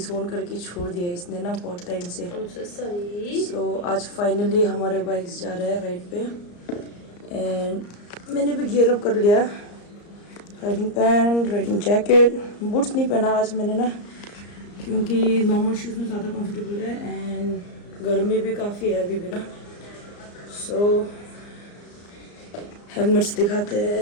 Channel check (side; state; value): right; late; 34 ms